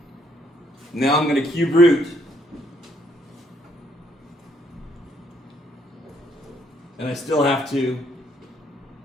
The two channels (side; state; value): both; normal; correlation 0.69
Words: Now I'm going to cube root. And I still have to